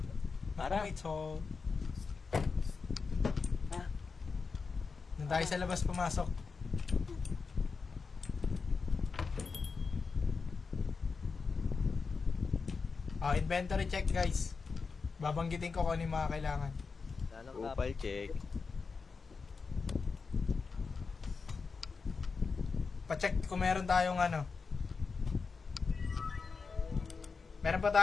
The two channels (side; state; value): right; quieter; 4.8 dB